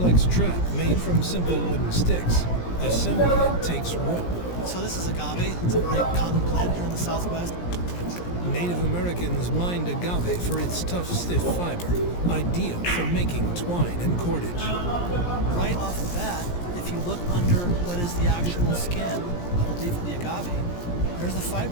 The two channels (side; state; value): right; late; 17 ms